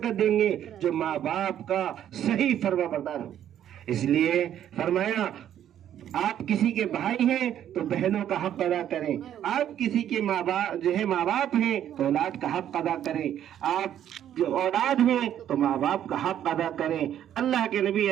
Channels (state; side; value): quieter; left; 10.6 dB